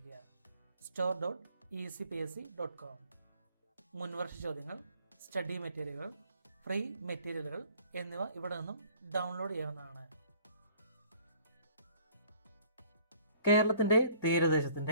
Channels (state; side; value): inverted; both; correlation -0.56